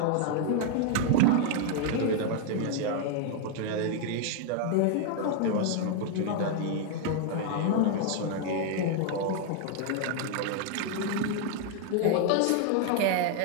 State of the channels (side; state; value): both; different; correlation 0.00